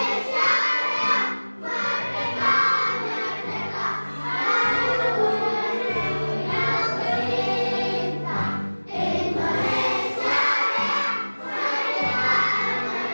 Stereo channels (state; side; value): inverted; both; correlation -1.00